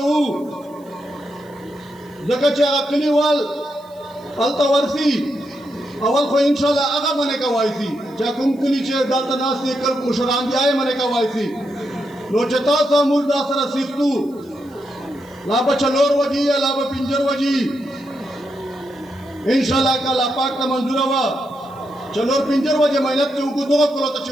زکا چھے آگا کلی وال التا ورسی اول خو انشاءاللہ آگا منے کا وائسی چاہ کم کلی چھے دالتا ناسی کل مشران بھی آئے منے کا وائسی نو چھے تاسا مول دا سر سیختو لابا چلور وجی یا لابا پنجر وجی انشاءاللہ کا لاپاک تا منظور ہوا چلور پنجر وجی محنت چھے انکو دو کرو تا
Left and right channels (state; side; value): noise; right; hiss, 29 dB below the sound